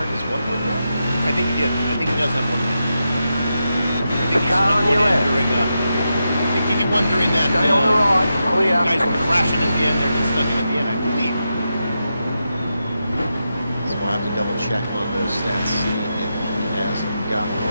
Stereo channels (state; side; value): inverted; both; correlation -0.88